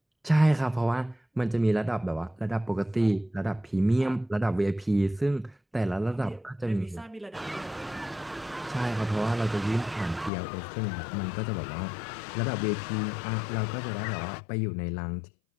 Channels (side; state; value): right; drops out; at 10.3 s